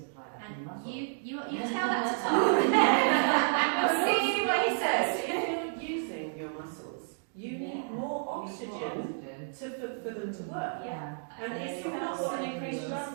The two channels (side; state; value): left; silent; digital silence